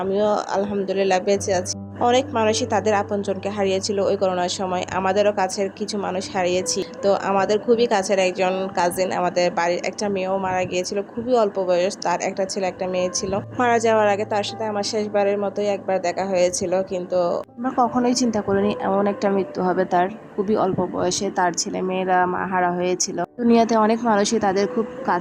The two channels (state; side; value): identical; both; correlation 1.00